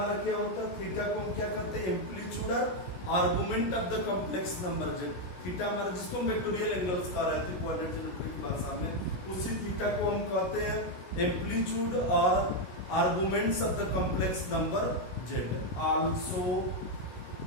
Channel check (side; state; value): right; late; 16 ms